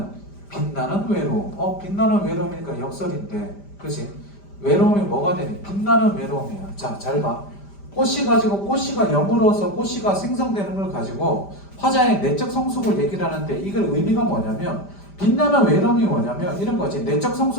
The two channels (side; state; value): right; late; 5.0 ms